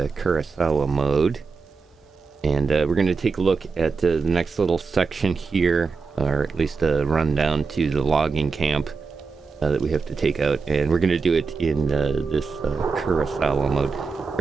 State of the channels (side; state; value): left; quieter; 4.8 dB